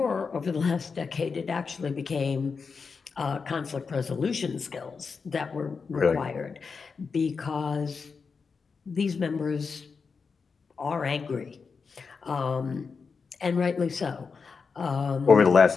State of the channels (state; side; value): quieter; right; 5.2 dB